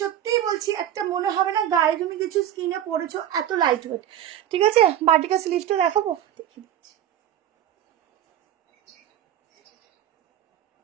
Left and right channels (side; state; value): left; quieter; 11.0 dB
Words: সত্যিই বলছি, একটা মনে হবে না গায়ে তুমি কিছু স্কিনে পড়েছো, এত লাইট ওয়েট, ঠিক আছে। বাটিকা স্লিভসটা দেখাবো, দেখি